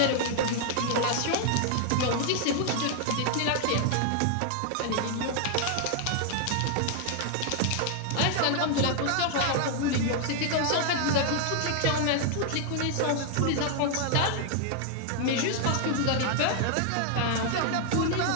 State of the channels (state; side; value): different; both; correlation 0.00